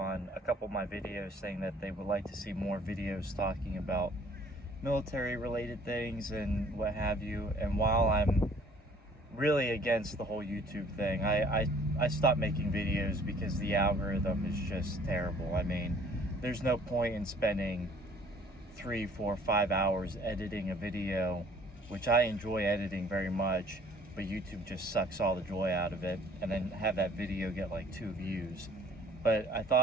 a couple of my videos saying that they would like to see more videos talking about military related things and what have you. And while I'm really against the whole YouTube thing, I stopped making videos because the algorithm is just terrible. I mean, there's no point in spending 3, 4, 5 hours editing a video, which I enjoy editing very much, but YouTube just sucks all the joy out of it, and then have that video get like 2 views. But I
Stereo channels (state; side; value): normal; both; correlation 0.56